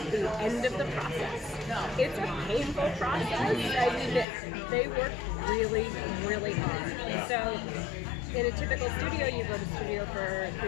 the end of the process. It's a painful process. I mean, they work really, really hard. Yeah. So in a typical studio, you go to studio for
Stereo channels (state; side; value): drops out; right; at 4.2 s